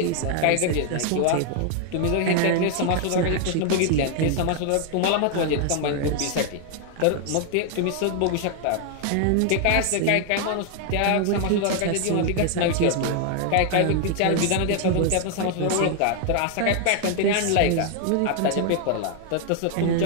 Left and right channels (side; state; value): both; different; correlation 0.00